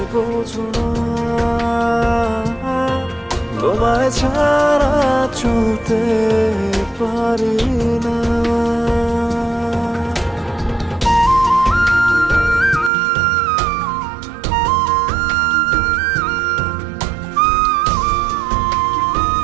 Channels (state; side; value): drops out; left; at 12.9 s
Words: বোঝো না তোমায় ছাড়া চলতে পারি না